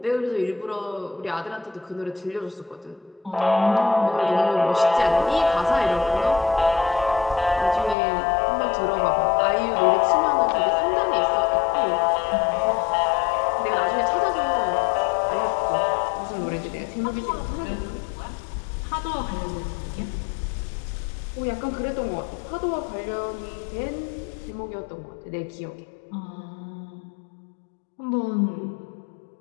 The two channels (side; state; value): right; drops out; at 8.0 s